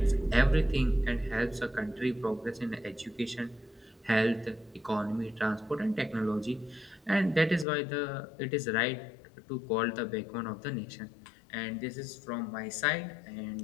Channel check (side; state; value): right; drops out; at 7.7 s